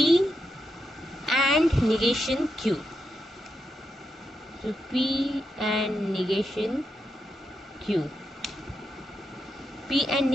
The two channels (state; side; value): normal; both; correlation 0.85